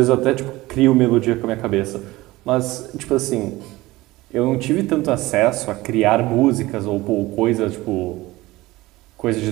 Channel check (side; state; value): left; quieter; 19.2 dB